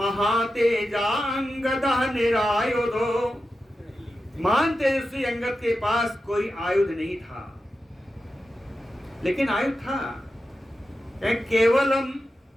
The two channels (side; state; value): both; normal; correlation 0.91